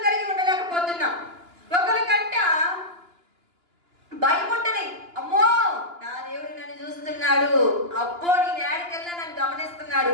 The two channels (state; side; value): late; left; 2.9 ms